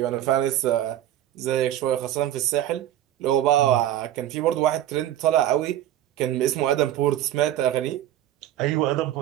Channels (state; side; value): quieter; left; 12.3 dB